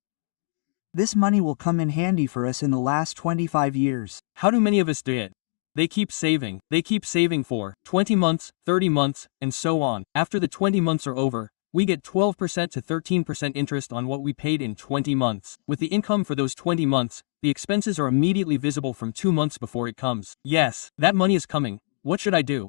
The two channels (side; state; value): right; silent; digital silence